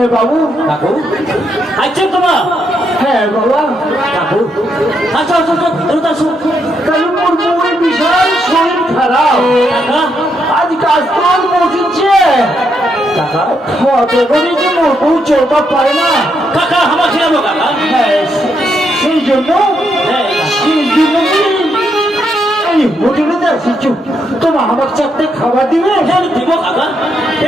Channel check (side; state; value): both; normal; correlation 0.78